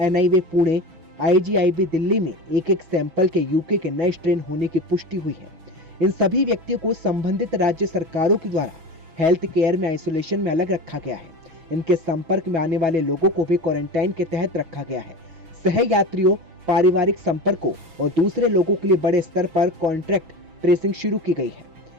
पुणे, आईजीआईबी दिल्ली में एक सैंपल के यूके के नए स्ट्रेन होने की पुष्टि हुई है। इन सभी व्यक्तियों को संबंधित राज्य सरकारों के द्वारा हेल्थ केयर में आइसोलेशन में अलग रखा गया है। इनके संपर्क में आने वाले लोगों को भी क्वारंटाइन के तहत रखा गया है। सह यात्रियों, पारिवारिक संपर्कों और दूसरे लोगों के लिए बड़े स्तर पर कॉन्ट्रैक्ट ट्रेसिंग शुरू की गई है।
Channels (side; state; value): left; late; 6.1 ms